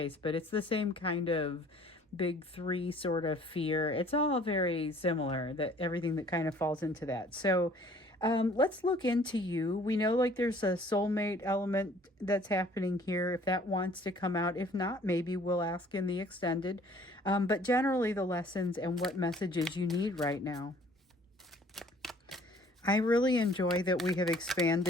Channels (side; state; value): both; normal; correlation 0.55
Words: but it's the same kind of big three sort of fear. It's all very similar, that everything that kind of falls into that. So let's look into you. We know like there's a soulmate element that's happening here, if that wants to come out. If not, maybe we'll ask in the extended. But generally the lessons and what messages you need right now. I really enjoy that we have